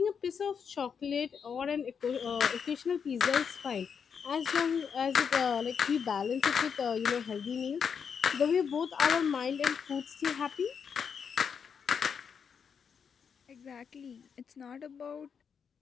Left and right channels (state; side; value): quieter; right; 6.8 dB